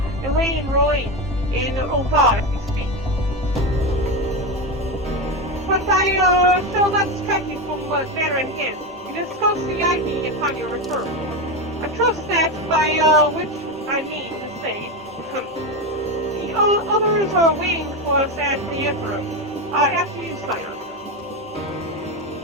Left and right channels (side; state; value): both; normal; correlation 0.15